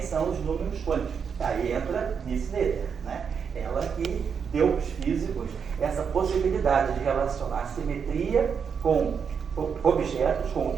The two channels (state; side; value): quieter; left; 6.6 dB